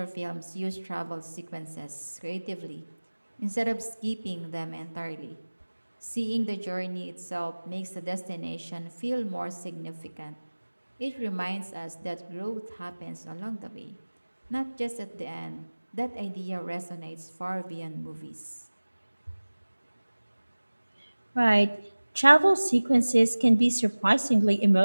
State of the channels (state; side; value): inverted; both; correlation -1.00